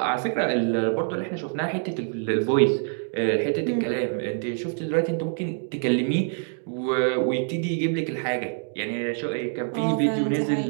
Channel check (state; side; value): silent; left; digital silence